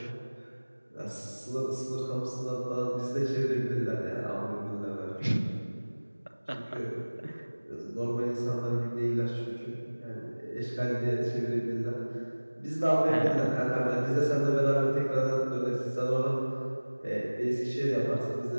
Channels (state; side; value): inverted; both; correlation -1.00